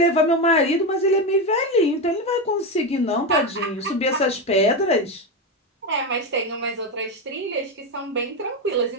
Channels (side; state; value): both; normal; correlation 0.13